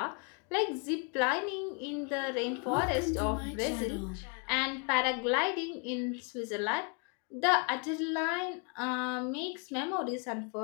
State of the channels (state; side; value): quieter; right; 36.6 dB